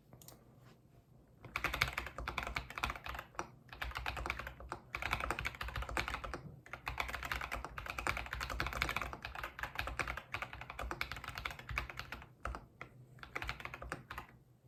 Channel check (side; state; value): both; identical; correlation 1.00